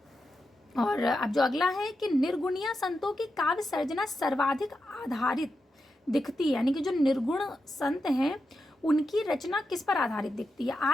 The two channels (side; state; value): both; normal; correlation 0.88